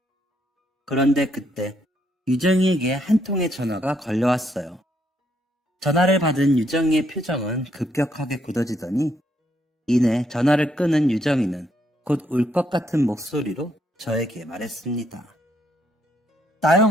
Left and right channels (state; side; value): normal; both; correlation 0.74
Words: 그런데 그때 유정이에게 한 통의 전화가 걸려왔어요. 전화를 받은 유정이의 표정은 급격하게 굳어지더니 이내 전화를 끊은 유정이는 곧 울 것 같은 목소리로 저에게 말했습니다.